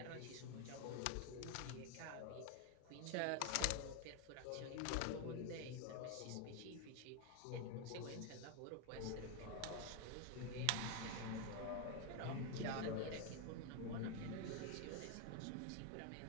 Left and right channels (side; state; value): both; different; correlation 0.01